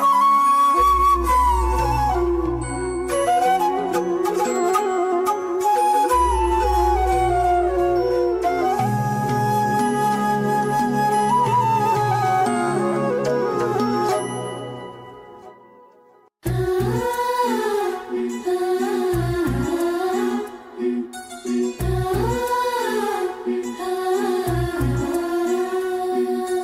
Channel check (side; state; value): both; identical; correlation 1.00